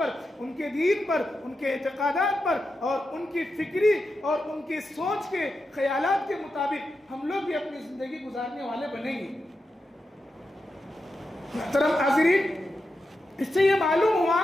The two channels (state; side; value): normal; both; correlation 0.88